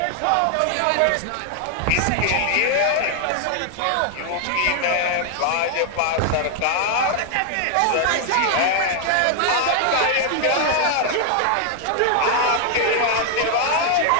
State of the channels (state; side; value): different; both; correlation 0.00